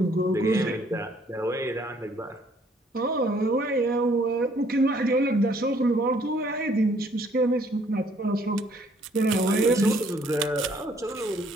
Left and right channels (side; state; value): both; normal; correlation 0.63